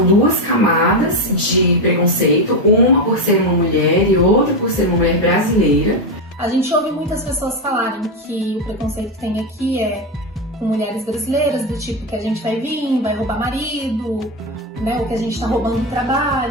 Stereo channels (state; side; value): normal; both; correlation 0.10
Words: duas camadas de preconceito, uma por ser uma mulher e outra por ser uma mulher brasileira. A gente ouve muitas pessoas falarem que o preconceito que tem aqui é com mulheres brasileiras, do tipo que a gente vai vir, vai roubar marido, né, ou que a gente tá roubando o